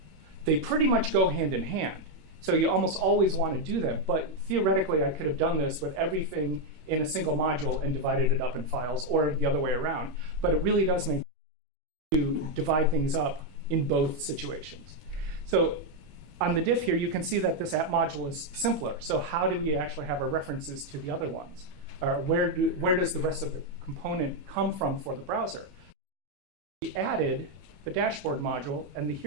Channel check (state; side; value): late; left; 21 ms